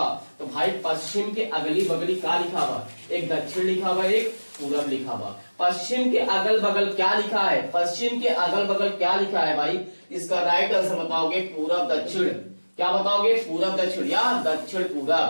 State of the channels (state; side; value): inverted; both; correlation -1.00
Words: तो भाई पश्चिम के अगली बगली क्या लिखा हुआ, एक दक्षिण लिखा हुआ, एक पूरब लिखा हुआ। पश्चिम के अगल बगल क्या लिखा है, पश्चिम के अगल बगल क्या लिखा है भाई, इसका राइट आंसर बताओगे पूरब दक्षिण। क्या बताओगे, पूरब दक्षिण या दक्षिण